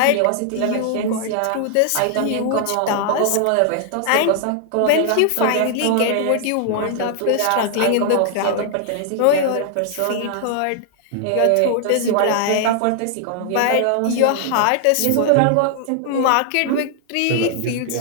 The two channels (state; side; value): different; both; correlation 0.00